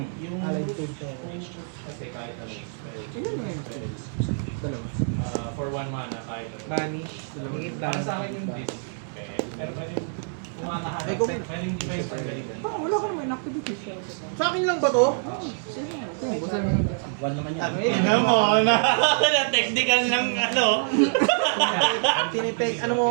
food talker. kasi kahit ano. Ilan mo yun? Dalawa. For 1 mana, kahit ano. Vanish. Hingit Para lang. sa akin yung disc. Okay. Pero pwede kumakaharap. Ay, kung- Pwedeng device pag ganito. Wala ka naman activity siya. Sa akin lang ba to? Basta naman. One naman yan. Tingnan mo, na technical ng ano. Tinipeg, ano mo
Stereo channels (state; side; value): silent; left; 61 dB below the other